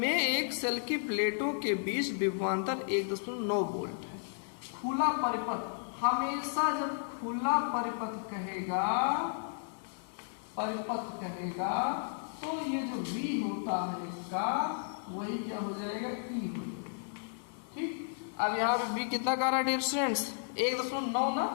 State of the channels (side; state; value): right; silent; digital silence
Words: एक सेल की प्लेटों के बीच विभवांतर 1.9 वोल्ट है। खुला परिपथ, हमेशा जब खुला परिपथ कहेगा तो ये जो V होता है इसका वही क्या हो जाएगा E हो जाएगा। ठीक, अब यहाँ पे B कितना का रहा है डियर स्टूडेंट्स 1.9 ना,